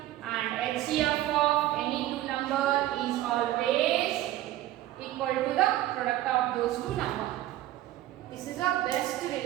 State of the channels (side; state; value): left; quieter; 14.6 dB